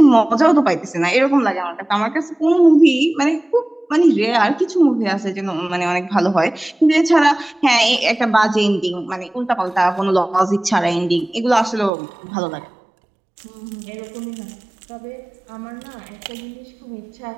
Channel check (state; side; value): drops out; left; at 11.9 s